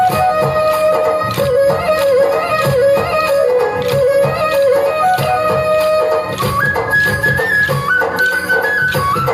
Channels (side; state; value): both; identical; correlation 1.00